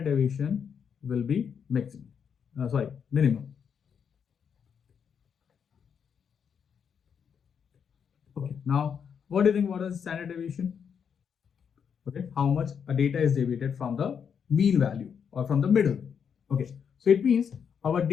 deviation will be minimum. Okay, now what do you think? What is standard deviation? Okay, how much a data is deviated from the mean value or from the middle. Okay, so it means our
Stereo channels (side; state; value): right; quieter; 7.2 dB